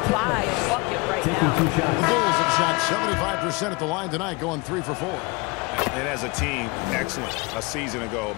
buy a bucket right now. The Bulls have shot 75% at the line tonight, going 3 for 4. And as a team, excellent. A season ago,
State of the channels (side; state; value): right; quieter; 26.5 dB